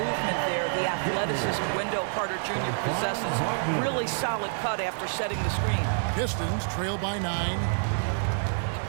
there the athleticism Wendell Carter Jr. possesses. Really solid cut after setting the screen. Pistons trail by 9.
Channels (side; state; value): left; silent; digital silence